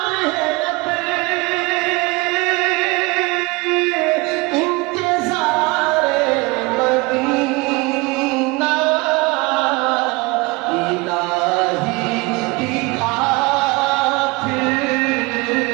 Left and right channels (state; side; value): quieter; left; 25.4 dB